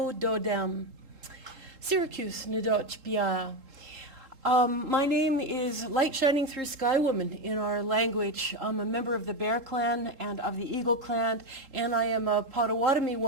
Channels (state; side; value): late; left; 3.7 ms